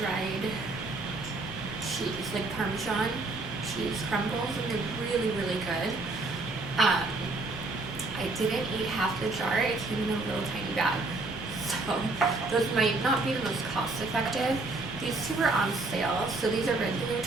cheese, like Parmesan cheese crumbles, and they're really, really good. I didn't eat half the jar. It came in a little tiny bag. So those might not be the most cost effective. These two were on sale. So these are regular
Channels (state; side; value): quieter; left; 3.2 dB